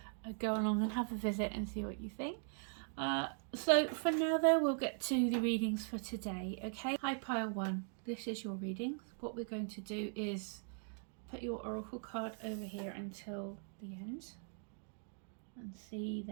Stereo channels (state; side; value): silent; left; 51 dB below the other